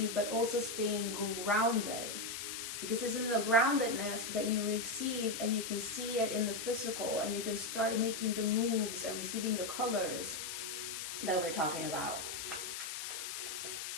but also staying grounded. Because it's in the groundedness that you receive, and you can see it in the physical, and you can start making the moves and receiving the colors that we're talking about.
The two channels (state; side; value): noise; left; hiss, 5 dB below the sound